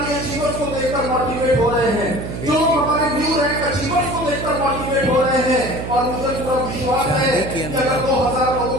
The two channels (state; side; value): noise; right; hum, 7 dB below the sound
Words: अचीवर्स को देखकर मोटिवेट हो रहे हैं, जो लोग हमारे न्यू रैंक अचीवर्स को देखकर मोटिवेट हो रहे हैं। और मुझे पूरा विश्वास है कि अगर 2000 लोगों